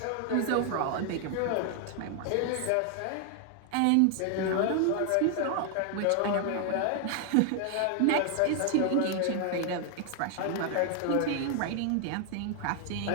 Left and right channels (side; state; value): both; different; correlation 0.00